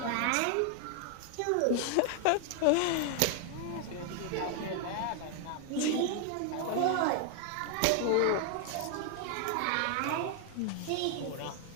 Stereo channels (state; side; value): different; both; correlation 0.00